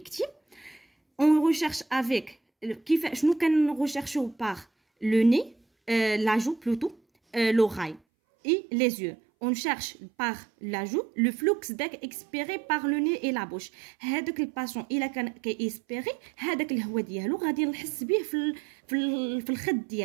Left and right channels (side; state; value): left; drops out; at 8.0 s